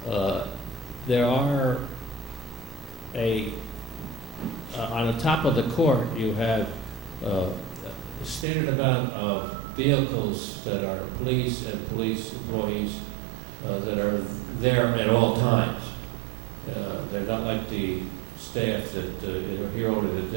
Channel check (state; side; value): drops out; left; at 8.5 s